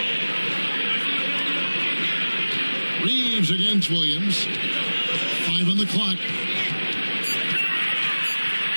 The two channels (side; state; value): both; inverted; correlation -1.00